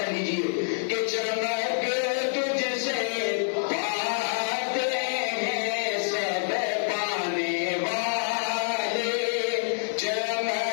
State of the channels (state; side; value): silent; right; digital silence